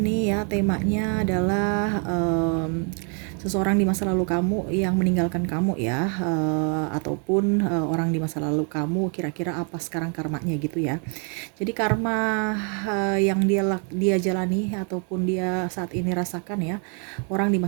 ya. Temanya adalah seseorang di masa lalu kamu yang meninggalkan kamu ya, ataupun orang di masa lalu kamu kira-kira apa sekarang karmanya gitu ya. Jadi karma yang dia jalani ataupun dia saat ini rasakan ya, orang di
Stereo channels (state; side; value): quieter; left; 39.7 dB